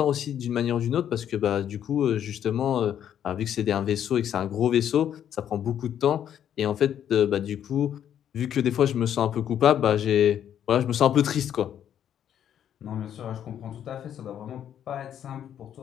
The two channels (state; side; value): quieter; right; 9.8 dB